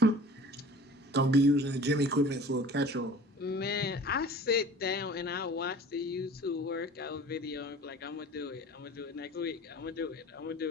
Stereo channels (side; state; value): both; normal; correlation 0.44